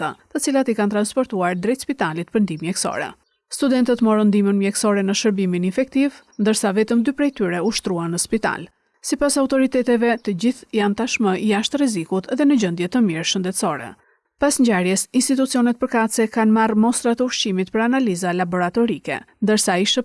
të cilat i kanë transportuar drejt spitalit për ndihmë mjekësore. Studentët morën ndihmën mjekësore në shërbimin infektiv, ndërsa vetëm 2 prej tyre u shtruan në spital. Sipas autoriteteve, të gjithë janë tashmë jashtë rrezikut dhe në gjendje të mirë shëndetësore. Pas ngjarjes, institucionet përkatëse kanë marrë mostra të ushqimit për analiza laboratorike, ndërsa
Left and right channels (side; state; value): both; identical; correlation 1.00